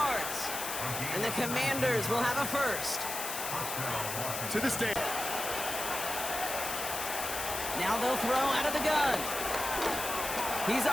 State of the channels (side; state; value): left; noise; hiss, 4 dB below the sound